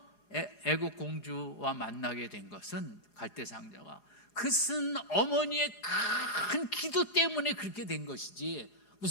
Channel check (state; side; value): late; right; 4.8 ms